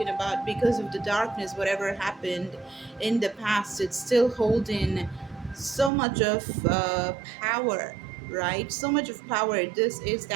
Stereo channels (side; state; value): left; drops out; at 5.9 s